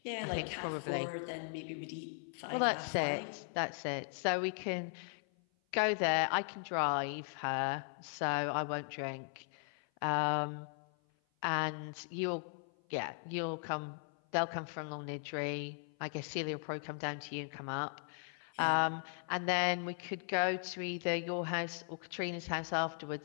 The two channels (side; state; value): right; silent; 52 dB below the other